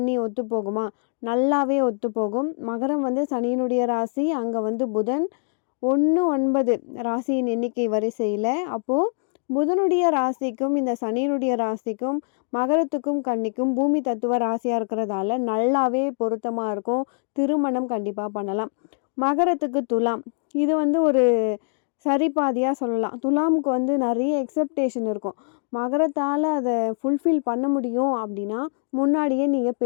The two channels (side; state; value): right; silent; digital silence